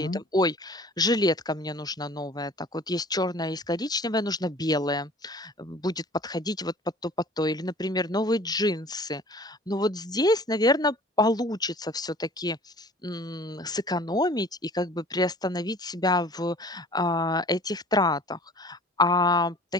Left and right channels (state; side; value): normal; both; correlation 0.47